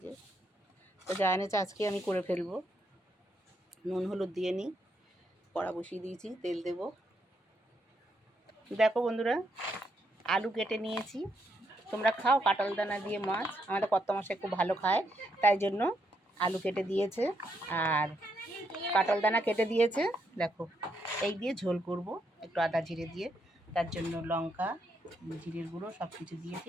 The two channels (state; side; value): normal; both; correlation 0.77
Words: যে তো যা এনেছে আজকে আমি করে ফেলবো। নুন হলুদ দিয়ে নিই, কড়া বসিয়ে দিয়েছি, তেল দেব। দেখো বন্ধুরা, আলু কেটে নিয়েছি। তোমরা খাও কাঁঠাল দানা দিয়ে মাছ? আমাদের কর্তামশাই খুব ভালো খায়, তাই জন্য আলু কেটে দিয়েছে আর কাঁঠাল দানা কেটে দিয়েছে। দেখো এই দিয়ে ঝোল করব, একটু আদা জিরে দিয়ে। তার জন্য লঙ্কা, জিরের গুঁড়ো সব কিছু দিয়েছি,